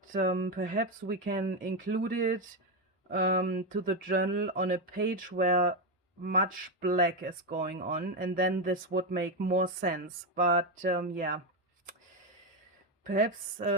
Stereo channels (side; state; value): both; normal; correlation 0.09